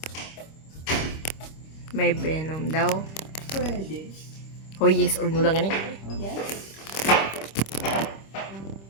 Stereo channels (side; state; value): right; late; 26 ms